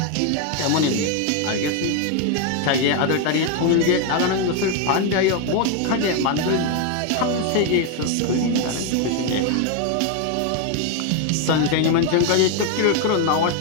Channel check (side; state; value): both; different; correlation 0.01